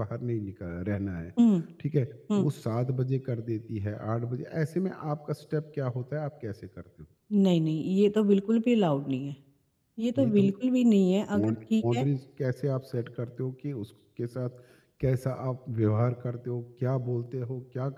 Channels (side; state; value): both; identical; correlation 1.00